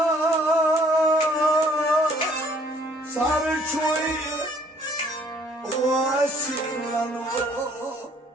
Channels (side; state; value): both; normal; correlation 0.60